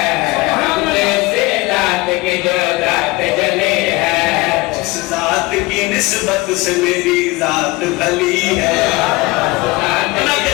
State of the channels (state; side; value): quieter; right; 22.1 dB